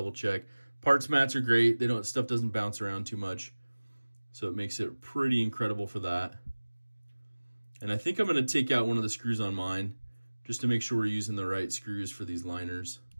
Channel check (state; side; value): inverted; both; correlation -1.00